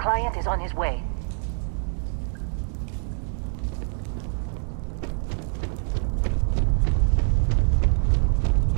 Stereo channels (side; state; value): left; silent; 58 dB below the other